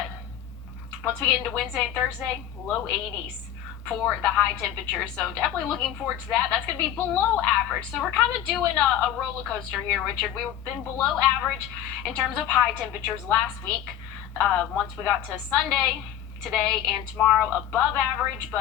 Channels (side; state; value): right; quieter; 10.5 dB